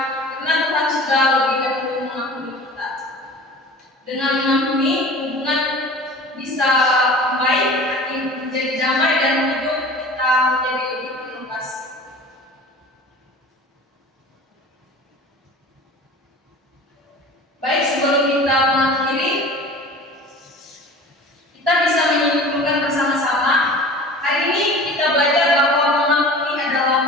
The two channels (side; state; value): both; normal; correlation 0.40